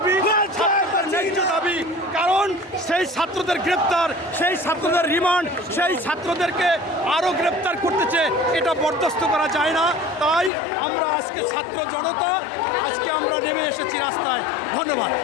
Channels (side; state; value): right; drops out; at 10.5 s